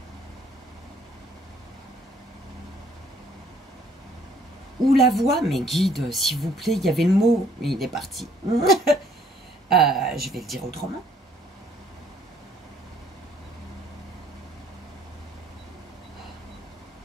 Ou la voix, mais guide, s'il vous plaît, il y avait le mot, il est parti. Je vais le dire autrement.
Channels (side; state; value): both; normal; correlation 0.63